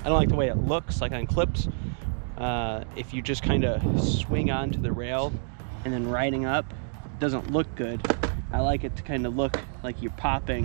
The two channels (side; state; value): left; silent; digital silence